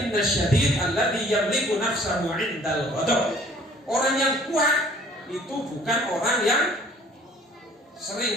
syadid alladhi yamliku nafsahu 'indal ghadab. Orang yang kuat itu bukan orang yang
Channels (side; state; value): both; normal; correlation 0.55